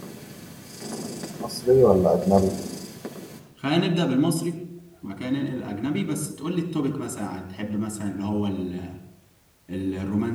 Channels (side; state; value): both; identical; correlation 1.00